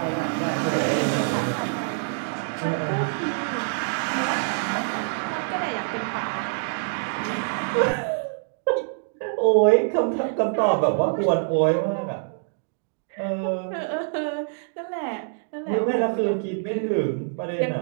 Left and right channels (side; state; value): left; silent; digital silence